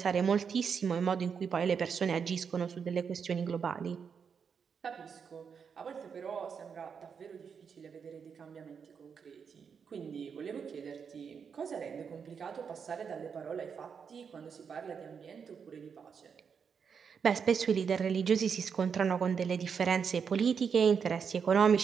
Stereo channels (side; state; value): left; quieter; 6.5 dB